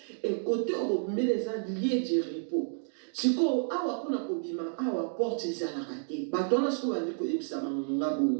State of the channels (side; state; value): left; silent; digital silence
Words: et côté bobimela eza lieu du repos siko awa kuna kobima awa porte ezalaka te bato wana siko bandi koyebisa bango nga